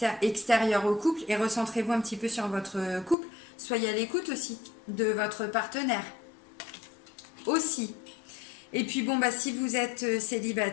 extérieur au couple et recentrez-vous un petit peu sur votre couple. Soyez à l'écoute aussi de votre partenaire. Aussi. Et puis bon, si vous êtes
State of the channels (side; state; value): right; drops out; at 3.2 s